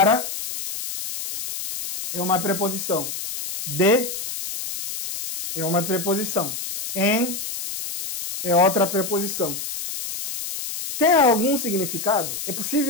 é uma preposição. De é uma preposição. Em é outra preposição. Tem algum significado? É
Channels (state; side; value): noise; left; hiss, 6 dB below the sound